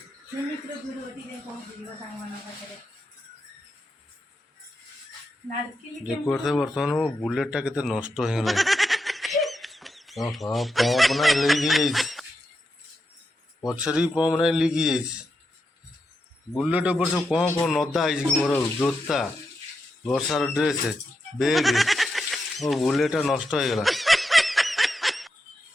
ନିମିକିର ଭିଡ଼ିଓ ଟିକେ ପହଞ୍ଚିଯିବ ସାଙ୍ଗମାନଙ୍କ ପାଖରେ। ନାଡ଼କିଲି ଦେଖୁଥିବେ ବର୍ତ୍ତମାନ ମୋ ବୁଲେଟଟା କେତେ ନଷ୍ଟ ହେଇଗଲାଣି। ଓହୋ, ପମ୍ପ ନା ଲିକ୍ ହେଇଯାଇଛି। ପଛରେ ବି ପମ୍ପ ନାହିଁ, ଲିକ୍ ହେଇଯାଇଛି। ବୁଲେଟ ଉପରେ ସବୁ କ'ଣ ନଦା ହେଇଛି କି ମୋର ଜୋତା, ବର୍ଷାର ଡ୍ରେସ୍, ବେଗ୍। ମୋ ବୁଲେଟଟା ନଷ୍ଟ ହେଇଗଲା।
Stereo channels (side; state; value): both; normal; correlation 0.86